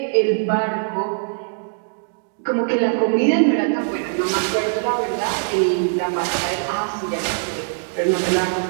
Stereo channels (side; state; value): left; silent; digital silence